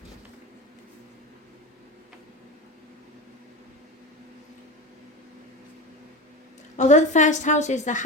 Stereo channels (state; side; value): normal; both; correlation 0.25